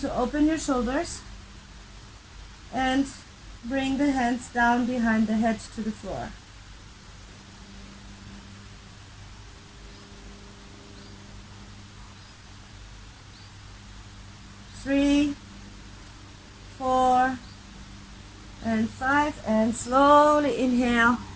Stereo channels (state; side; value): identical; both; correlation 1.00